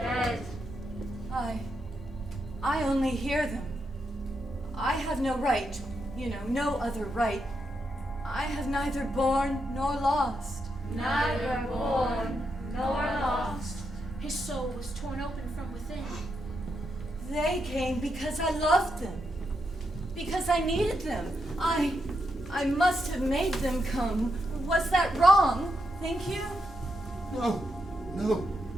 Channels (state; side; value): normal; both; correlation 0.83